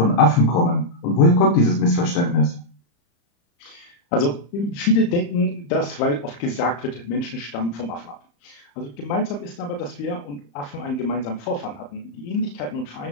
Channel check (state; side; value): late; right; 35 ms